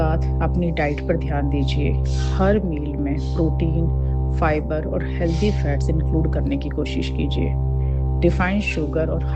अपनी डाइट पर ध्यान दीजिए। हर मील में प्रोटीन, फाइबर और हेल्दी फैट्स इंक्लूड करने की कोशिश कीजिए। रिफाइंड शुगर और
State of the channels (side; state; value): both; identical; correlation 1.00